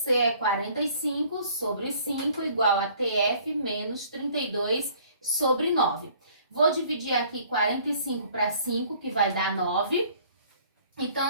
é 45 sobre 5 igual a TF menos 32 sobre 9. Vou dividir aqui 45 para 5, que vai dar 9.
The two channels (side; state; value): both; inverted; correlation -0.56